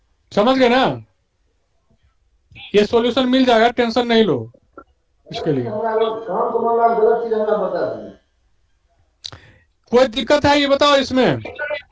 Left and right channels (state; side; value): identical; both; correlation 1.00